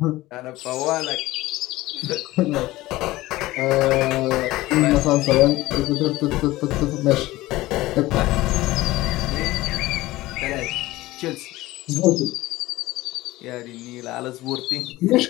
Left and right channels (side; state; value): right; quieter; 18.0 dB